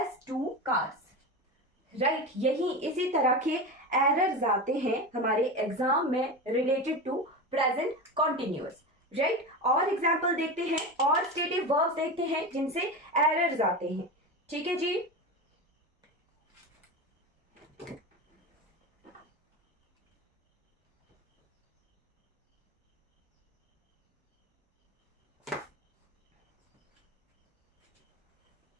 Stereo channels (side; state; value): both; normal; correlation 0.23